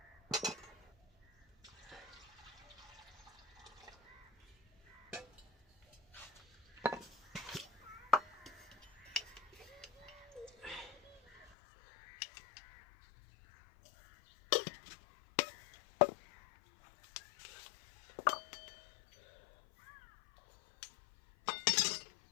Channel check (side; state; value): right; drops out; at 11.5 s